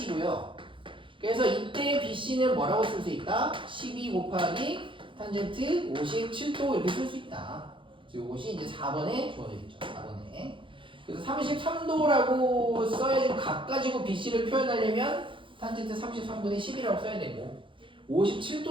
그래서 이때 BC는 뭐라고 쓸 수 있다? 12 곱하기 탄젠트 57도 이렇게 쓸 수 있다. 그래서 이것이 이제 4번에 주어져 있죠. 4번에. 그래서 33도라고 써야지 각 가지고 BC를 표현하려면 탄젠트 33분의 10이라고 써야 되고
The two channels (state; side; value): late; left; 0.25 ms